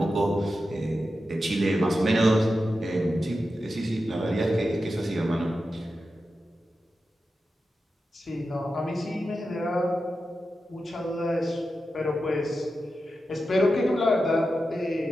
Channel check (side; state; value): both; normal; correlation 0.91